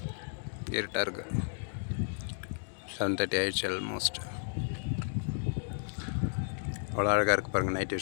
இருட்டாக இருக்குது. 7:30 ஆயிடுச்சு ஆல்மோஸ்ட். அவ்வளோ அழகாக இருக்குது பாருங்கள் நைட்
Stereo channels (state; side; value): silent; right; digital silence